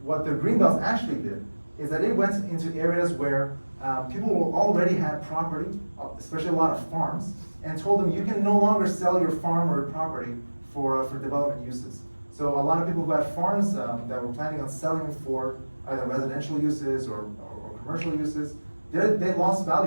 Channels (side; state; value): both; inverted; correlation -1.00